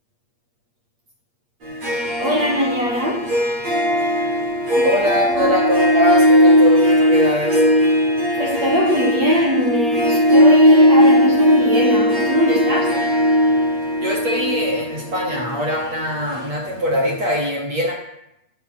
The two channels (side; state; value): left; late; 8.5 ms